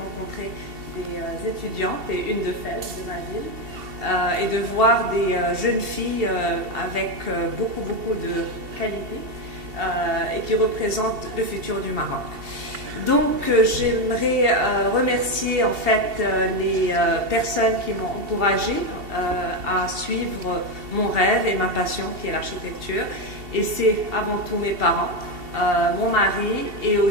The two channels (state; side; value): late; left; 2.7 ms